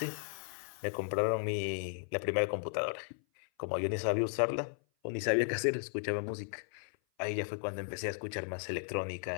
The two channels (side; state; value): right; silent; 54 dB below the other